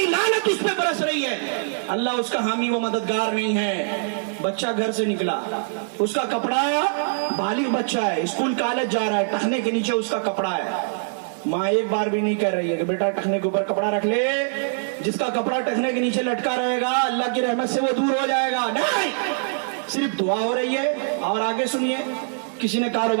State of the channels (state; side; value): silent; left; digital silence